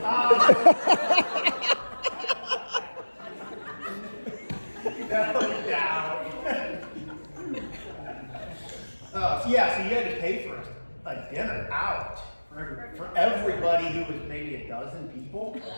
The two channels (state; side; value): inverted; both; correlation -1.00